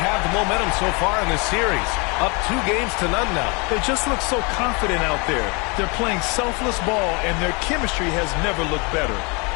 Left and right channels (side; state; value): right; quieter; 30.5 dB